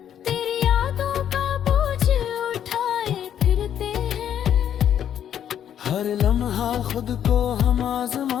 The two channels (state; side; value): quieter; right; 9.7 dB